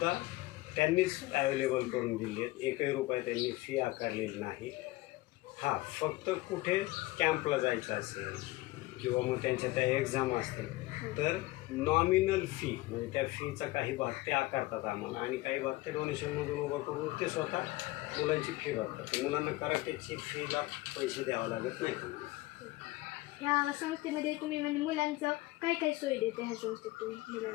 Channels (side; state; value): right; quieter; 19.5 dB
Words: त्यांनीच अवेलेबल करून दिले आहेत. एकही रुपया त्यांनी फी आकारलेली नाही. हां, फक्त कुठे कॅम्पला जायचं असेल किंवा मग त्यांच्या त्या एक्झाम असतील तर नॉमिनल फी म्हणजे त्या फीचा काही भाग ते आकारतात आम्हाला, आणि काही भाग ते डोनेशनमधून उभं करून ते स्वतः मुलांची फी भरतात. मुलांना कराटेची फीला पैसे द्यावे लागत नाही. ह्या संस्थेमध्ये तुम्ही म्हणजे मुलांचं काय काय सोय देते ह्या संस्थेत तुम्ही